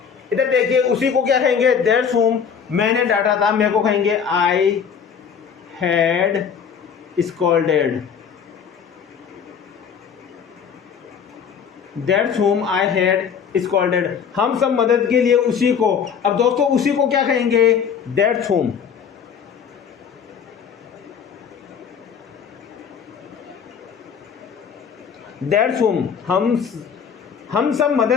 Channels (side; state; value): right; quieter; 7.1 dB